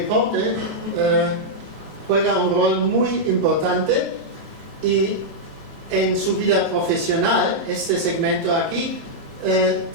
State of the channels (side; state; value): left; late; 27 ms